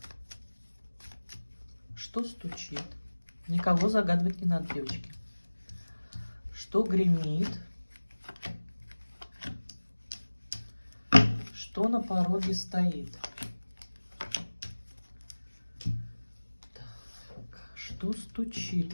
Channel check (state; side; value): inverted; both; correlation -1.00